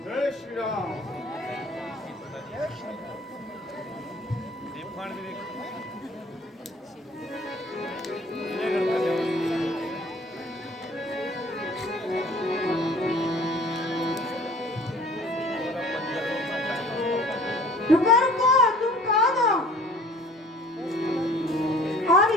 जय श्री राम। रुको रुको, तुम कौन हो और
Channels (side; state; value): both; normal; correlation 0.50